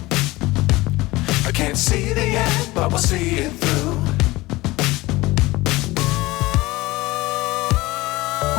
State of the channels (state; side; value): quieter; right; 20.1 dB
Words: I can't see the end, but we'll see it through.